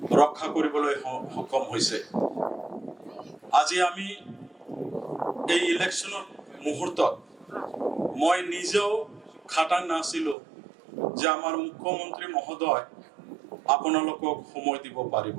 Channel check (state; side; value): drops out; left; at 10.4 s